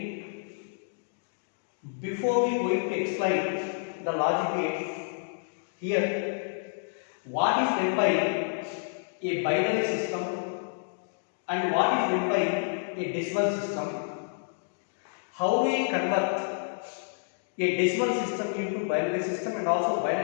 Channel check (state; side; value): silent; right; digital silence